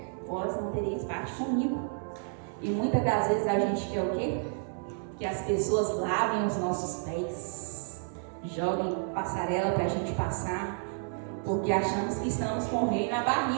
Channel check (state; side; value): silent; left; 55 dB below the other